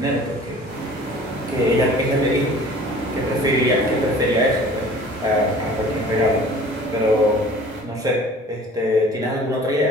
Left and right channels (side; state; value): both; normal; correlation 0.47